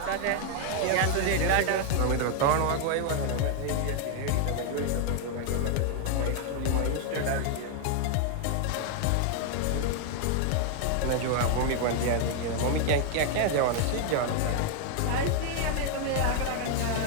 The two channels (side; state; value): both; different; correlation 0.00